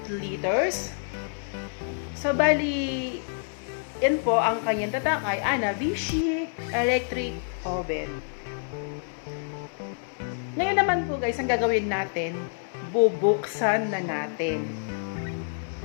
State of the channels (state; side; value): silent; right; digital silence